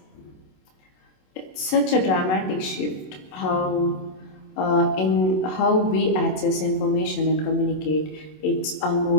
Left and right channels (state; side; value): late; right; 27 ms